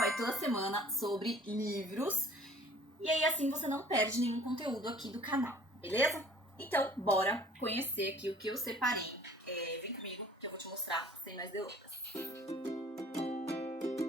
toda semana sobre livros. E aí, assim, você não perde nenhum conteúdo aqui do canal, beleza? Então, bora conhecer aqui o que eu separei. Vem comigo que eu vou te mostrar sem mais delongas.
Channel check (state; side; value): normal; both; correlation 0.51